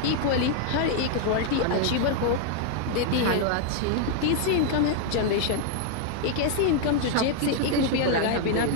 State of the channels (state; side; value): different; both; correlation 0.00